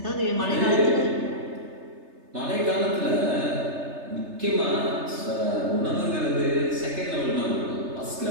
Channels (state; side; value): late; left; 3.3 ms